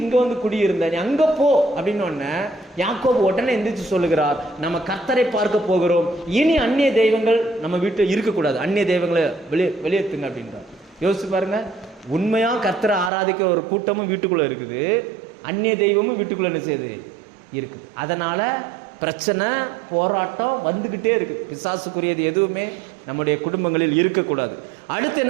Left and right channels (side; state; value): left; drops out; at 13.1 s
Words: இங்க வந்து குடியிருந்த, நீ அங்க போ அப்படின்னு உடனே யாக்கோபு உடனே எந்திரிச்சு சொல்லுகிறார், நம்ம கர்த்தரை பார்க்க போகிறோம், இனி அந்நிய தெய்வங்கள் நம்ம வீட்டில் இருக்கக்கூடாது, அந்நிய தெய்வங்களை வெளியேற்றுங்க அப்படின்றார். யோசிச்சு பாருங்க, உண்மையா கர்த்தரை ஆராதிக்க ஒரு கூட்டமும் வீட்டுக்குள்ள இருக்குது, அந்நிய தெய்வமும் வீட்டுக்குள்ள என்ன செய்யுது இருக்குது. அதனால பிரச்சனை போராட்டம் வந்துகிட்டே இருக்கு. பிசாசுக்குரியது எதுவுமே நம்முடைய குடும்பங்களில் இருக்கக்கூடாது. அடுத்து